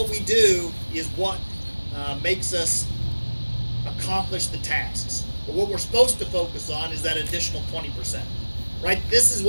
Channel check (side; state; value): both; inverted; correlation -1.00